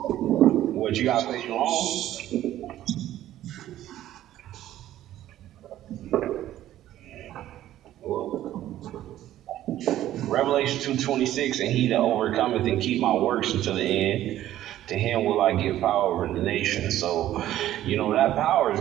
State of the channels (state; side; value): quieter; left; 13.1 dB